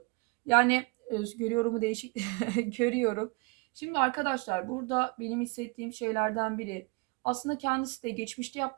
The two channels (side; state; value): left; quieter; 29.0 dB